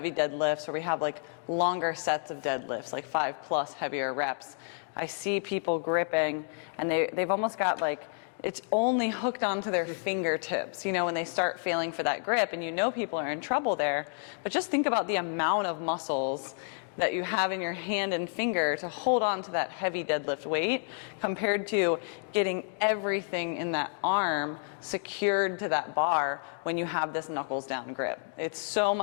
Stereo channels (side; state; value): right; silent; 58 dB below the other